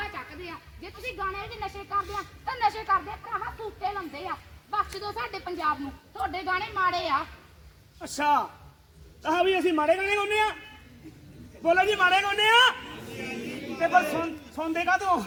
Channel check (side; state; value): both; identical; correlation 1.00